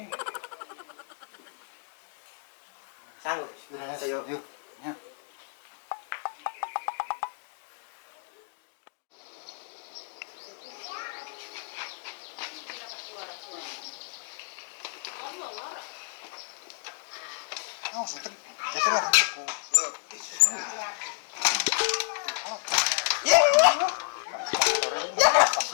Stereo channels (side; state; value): right; silent; 57 dB below the other